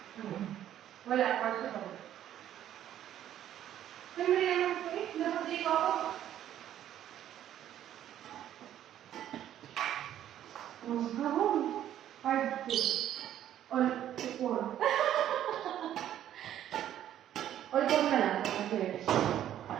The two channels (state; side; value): quieter; left; 11.3 dB